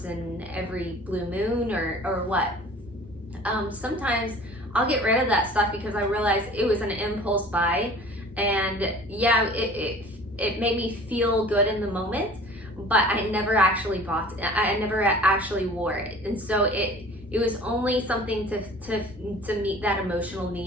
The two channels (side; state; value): both; normal; correlation 0.46